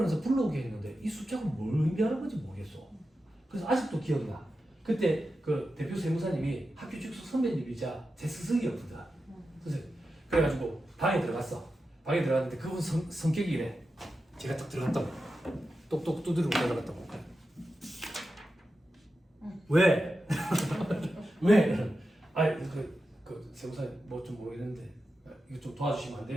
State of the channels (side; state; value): both; normal; correlation 0.91